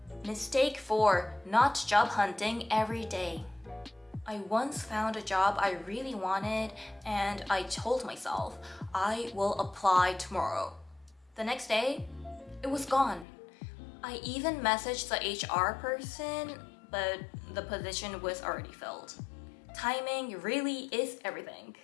Mistake 4, not job hunting every day. I once found a job I really wanted and I told myself, I will apply tomorrow. The next day, it was gone. I even messaged the HR person, but the position was already filled. Timing really is everything.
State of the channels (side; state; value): right; drops out; at 13.2 s